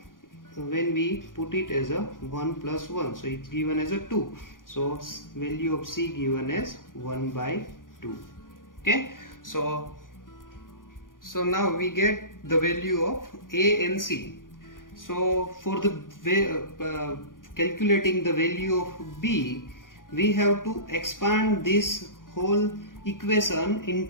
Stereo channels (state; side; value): late; right; 0.89 ms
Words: when we put it as 1 plus 1, so it's given as 2, so value of c given as 1 by 2. Okay, so now we get the value of a and c. So for the calculating the value of b, we have to expand this whole equation in